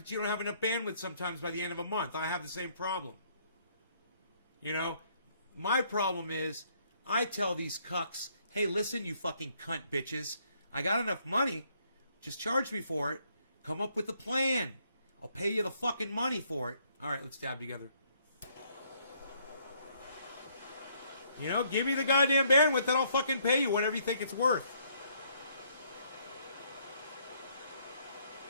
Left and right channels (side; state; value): both; inverted; correlation -0.68